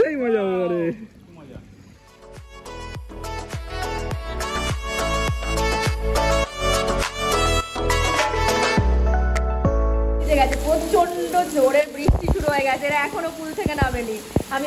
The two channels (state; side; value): identical; both; correlation 1.00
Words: মজা হবে। প্রচন্ড জোরে বৃষ্টি শুরু হয়ে গেছে, এরা এখনো পুল থেকে নামেনি।